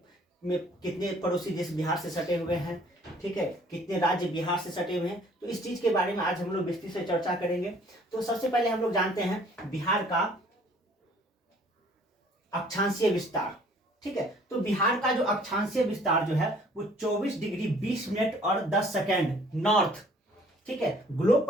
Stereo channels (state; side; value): normal; both; correlation 0.56